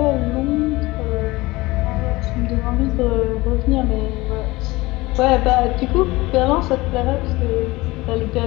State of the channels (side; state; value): right; quieter; 20.9 dB